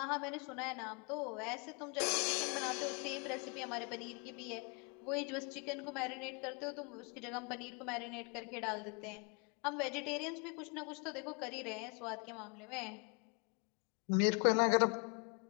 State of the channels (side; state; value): right; quieter; 33.9 dB